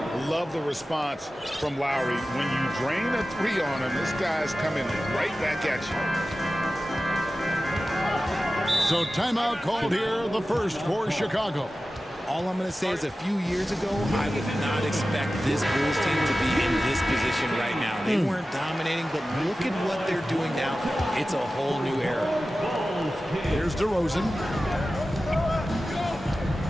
Love the response from Lowry. When you drain a 3 on him, this guy's coming right back at you. So timeout called here, the first for Chicago. All I'm going to say is a few years ago, I would not expect this Bulls team to be in this position right now. They weren't dominating, but look at what they're doing now. It's a whole new era. Here's DeRozan.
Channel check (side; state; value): both; normal; correlation 0.95